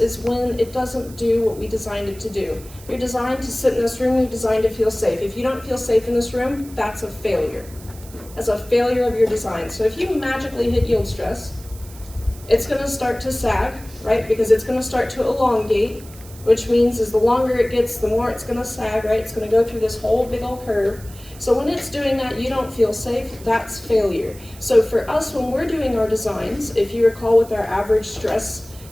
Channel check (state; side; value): noise; right; hiss, 20 dB below the sound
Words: is when it doesn't do what we designed it to do. You're designed to sit in this room, you're designed to feel safe. If you don't feel safe in this room, that's a failure. That's a failure of your design. So if you magically hit yield stress, it's gonna start to sag, right? Because it's gonna start to elongate, which means is the longer it gets, the more it's gonna sag, right? It's gonna go through this whole big old curve. So when it's doing that, you don't feel safe, that's failure. So for us, when we're doing our designs, if you recall with our average stress